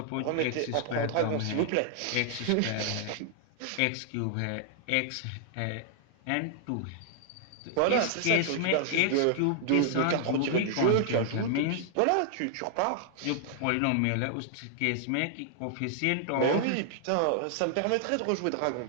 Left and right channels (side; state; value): both; different; correlation 0.00